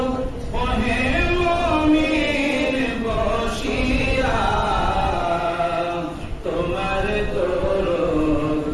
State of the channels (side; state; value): both; identical; correlation 1.00